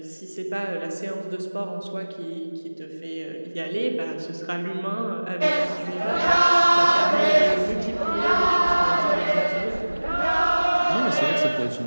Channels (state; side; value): inverted; both; correlation -1.00